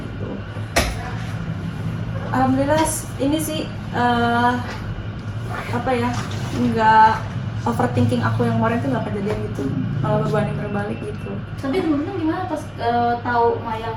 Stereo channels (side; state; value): both; identical; correlation 1.00